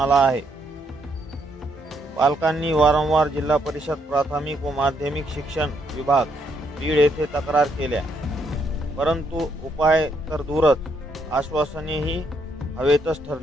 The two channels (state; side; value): normal; both; correlation 0.74